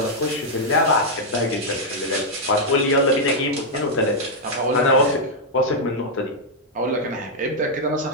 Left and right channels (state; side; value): normal; both; correlation -0.03